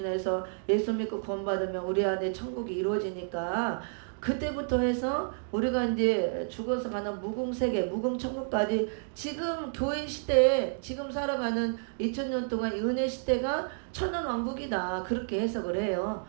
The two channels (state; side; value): silent; left; digital silence